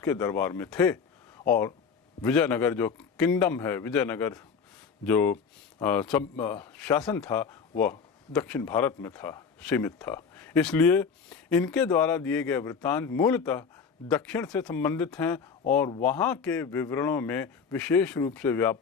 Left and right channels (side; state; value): right; quieter; 5.9 dB